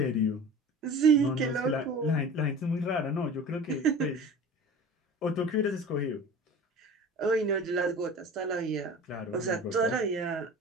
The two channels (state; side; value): normal; both; correlation 0.38